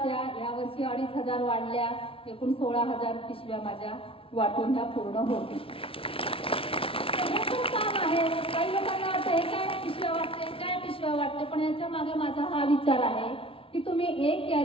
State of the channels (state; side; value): late; right; 0.26 ms